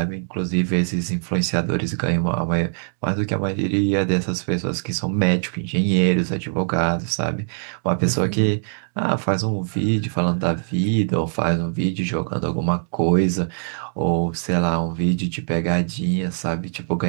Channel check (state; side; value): silent; left; digital silence